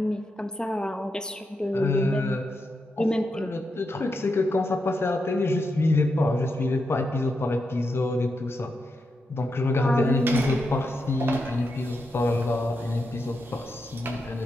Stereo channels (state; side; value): normal; both; correlation 0.85